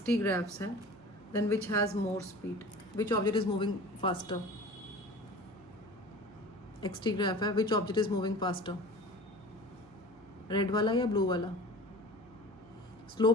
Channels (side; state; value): right; noise; hum, 25 dB below the sound